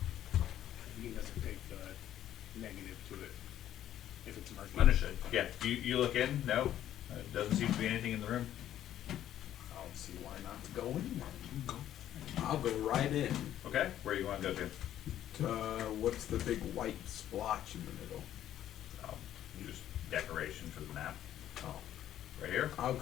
He doesn't take the negative to it if it's murky. Understood. Yeah. You look in. No, doesn't seem to be anything in the room. I don't see why not to go in. I'll go right in. Okay. Where you want to go to? What's the big white splotch in the middle? Just decoration for the map. Oh, Right here. I'll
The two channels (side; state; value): right; quieter; 11.7 dB